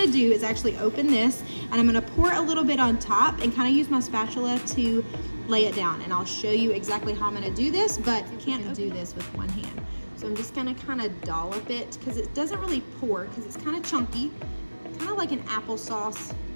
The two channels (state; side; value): inverted; both; correlation -1.00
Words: to do is actually open this, and I'm going to pour a little bit on top and kind of use my spatula to lay it down, and I'll show you exactly how I'm going to do this, but you can't do this with one hand. So I'm just going to kind of dollop it because it doesn't really pour because it's kind of chunky, kind of like an applesauce